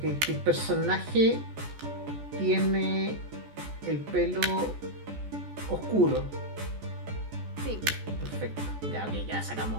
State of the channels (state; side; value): late; left; 14 ms